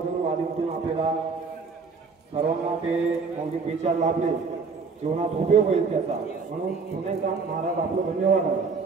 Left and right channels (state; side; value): quieter; left; 4.8 dB